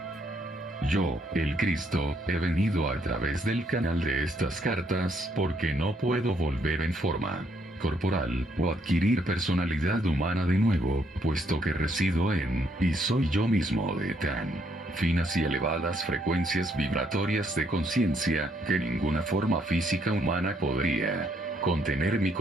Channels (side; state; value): both; normal; correlation 0.71